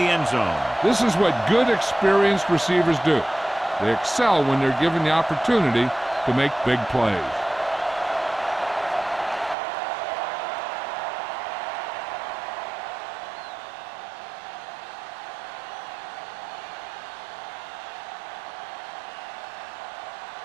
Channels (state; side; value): drops out; left; at 9.6 s